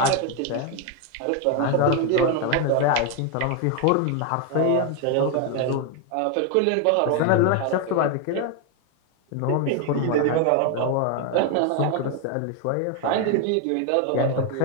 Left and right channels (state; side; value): different; both; correlation 0.01